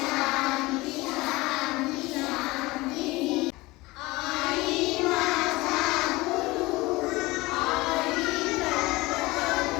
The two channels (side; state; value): right; quieter; 21.3 dB